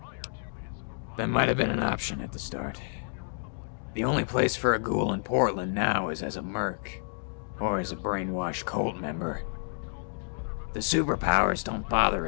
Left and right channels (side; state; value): right; silent; digital silence